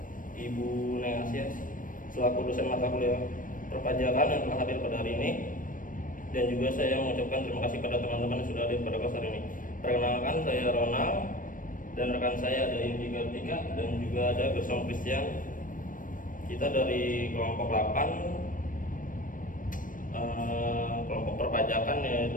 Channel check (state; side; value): late; right; 0.39 ms